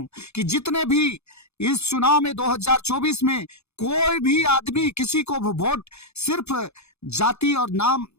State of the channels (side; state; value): right; late; 0.80 ms